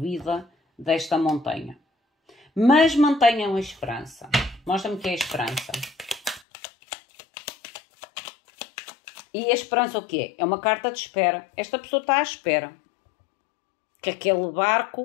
desta montanha. Mas mantenham a esperança. Mostra-me que é a esperança. E a esperança o que é? É uma carta de espera. Esta pessoa está à espera que aquele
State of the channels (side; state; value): right; drops out; at 6.4 s